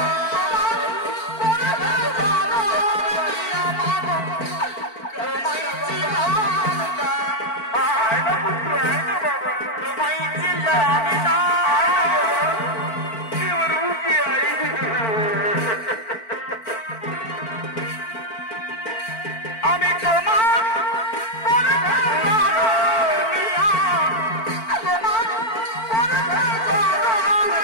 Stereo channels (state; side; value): late; right; 4.5 ms